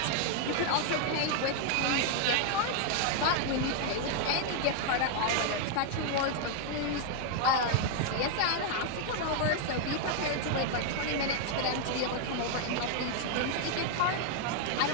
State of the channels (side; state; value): both; different; correlation 0.00